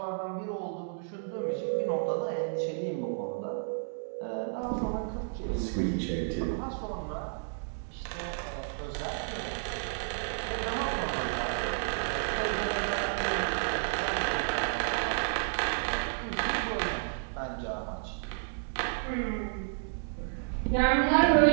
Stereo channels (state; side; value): silent; left; digital silence